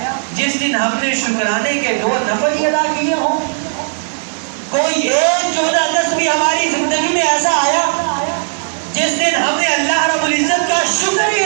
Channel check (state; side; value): silent; left; digital silence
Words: جس دن ہم نے شکرانے کے 2 نفل ادا کیے ہوں؟ کوئی ایک 14 اگست بھی ہماری زندگی میں ایسا آیا جس دن ہم نے اللہ رب العزت کا شکر ہی